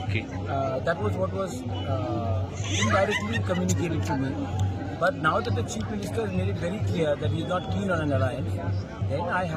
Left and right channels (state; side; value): identical; both; correlation 1.00